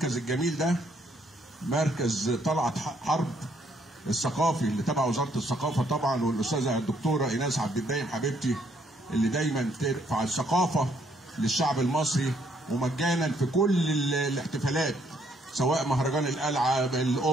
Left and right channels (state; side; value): normal; both; correlation 0.70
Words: الجميل ده، مركز طلعت حرب الثقافي اللي تبع وزاره الثقافه طبعا، والاستاذه الدكتوره ايناس عبد الدايم حبيبتي اللي دايما ترفع الثقافه للشعب المصري ومجانا في كل الاحتفالات، سواء مهرجان القلعه،